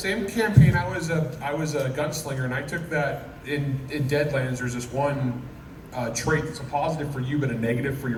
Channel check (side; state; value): both; identical; correlation 1.00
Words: campaign, I was a gunslinger, and I took that in Deadlands. There's this one trait that's a positive for you but a negative for your